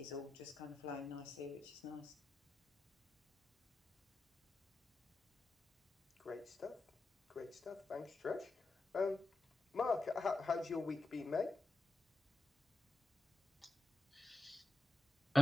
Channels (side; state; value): both; normal; correlation 0.92